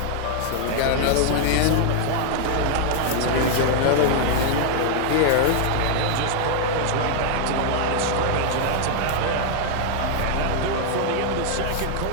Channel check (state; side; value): different; both; correlation 0.00